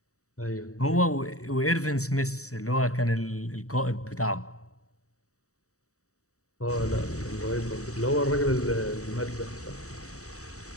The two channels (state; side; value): late; right; 0.65 ms